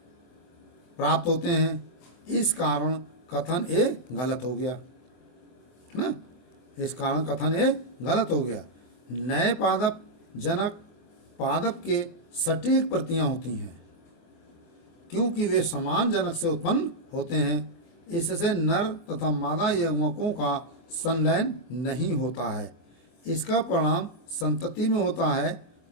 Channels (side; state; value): right; late; 24 ms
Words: प्राप्त होते हैं। इस कारण कथन ए गलत हो गया ना। इस कारण कथन ए गलत हो गया। नए पादप जनक पादप के सटीक प्रतियां होती हैं क्योंकि वे समान जनक से उत्पन्न होते हैं। इससे नर तथा मादा यवकों का संलयन नहीं होता है। इसका परिणाम संतति में होता है